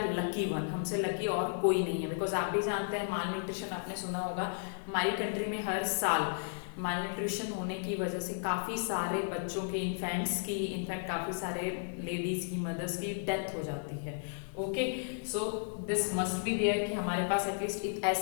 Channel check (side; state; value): right; silent; 55 dB below the other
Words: लकी वन, हमसे लकी और कोई नहीं है, बिकॉज आप भी जानते हैं माल न्यूट्रिशन आपने सुना होगा, हमारी कंट्री में हर साल माल न्यूट्रिशन होने की वजह से काफ़ी सारे बच्चों के, इन्फेंट्स की, इनफैक्ट काफ़ी सारे लेडीज़ की, मदर्स की डेथ हो जाती है। Okay, so this must be there कि हमारे पास एटलीस्ट